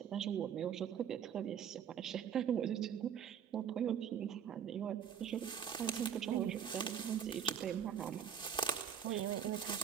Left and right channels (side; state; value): left; quieter; 8.4 dB